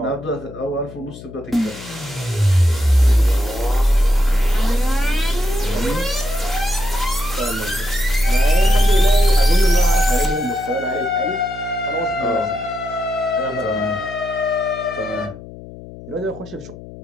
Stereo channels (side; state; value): left; noise; hum, 16 dB below the sound